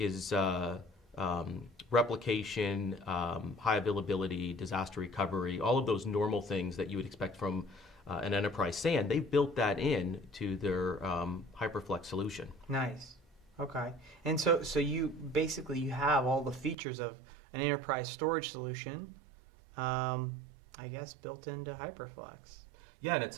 replication, high availability, disaster recovery, all of those normal things that you would expect from an enterprise SAN. They've built that in to their Hyperflex solution. Nice. Okay. And so you have all the features of an enterprise storage solution, I guess, built into Hyperflex. Yeah, and it's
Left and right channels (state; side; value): drops out; left; at 16.8 s